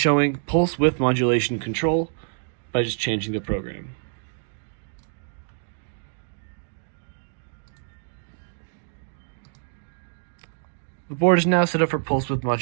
pulse width modulation control by just changing the program. The board is now set up for pulse width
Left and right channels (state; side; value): silent; left; digital silence